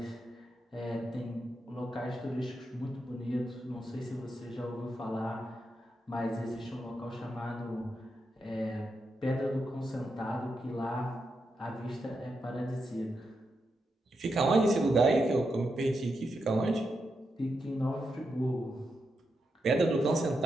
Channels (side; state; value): both; normal; correlation 0.85